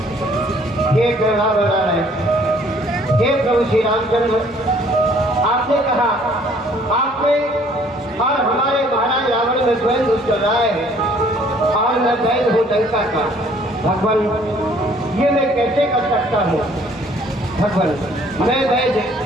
हे प्रभु श्री रामचंद्र, आपने कहा आपने और हमारे महाराज रावण में द्वंद्व चल रहा है और मैं वैध हूँ लंका का। भगवान, ये मैं कैसे कर सकता हूँ? भगवान, मैं वैध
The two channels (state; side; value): normal; both; correlation 0.59